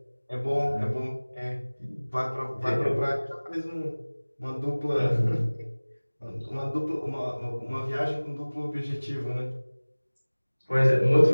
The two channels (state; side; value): inverted; both; correlation -1.00